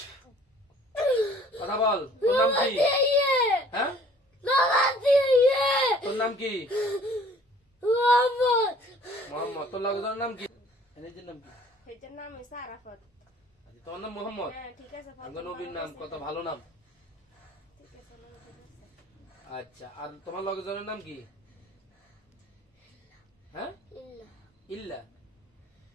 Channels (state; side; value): normal; both; correlation 0.53